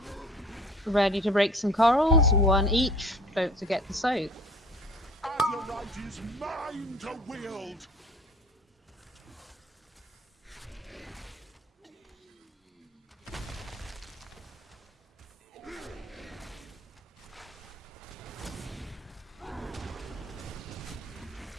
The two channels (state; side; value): normal; both; correlation 0.49